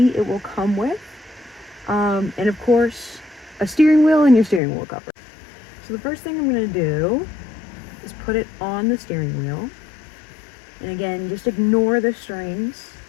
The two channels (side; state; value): right; drops out; at 4.6 s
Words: it will come with. And of course, a steering wheel and your steering wheel cover. So the first thing I'm going to do is put it on the steering wheel. And again, just ignore the strings.